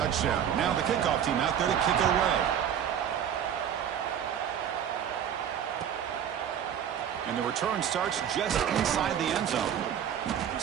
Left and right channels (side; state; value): left; quieter; 9.2 dB